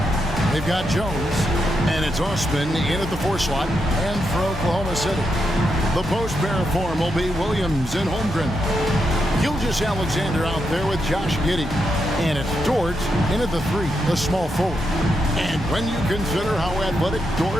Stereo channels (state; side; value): normal; both; correlation 0.83